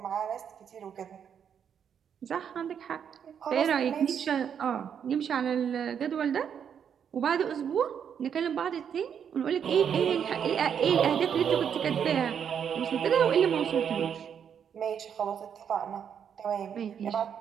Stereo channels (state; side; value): quieter; left; 8.0 dB